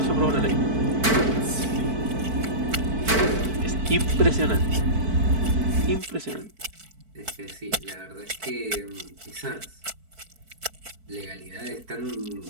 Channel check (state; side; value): late; left; 4.5 ms